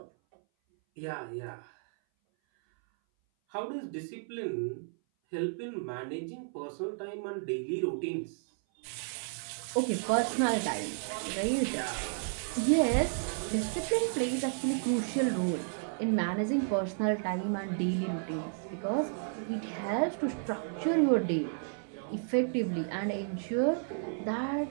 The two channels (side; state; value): left; silent; 56 dB below the other